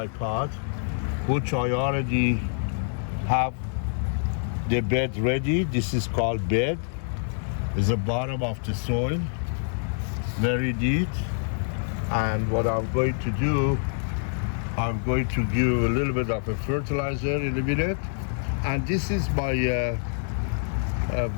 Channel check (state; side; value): silent; right; digital silence